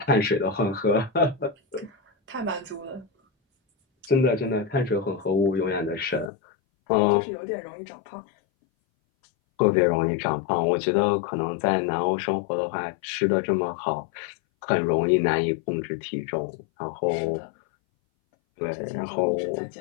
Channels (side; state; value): right; drops out; at 6.3 s